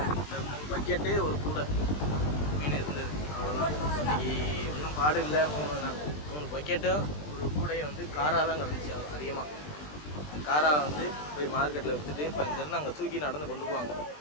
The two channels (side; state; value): right; late; 20 ms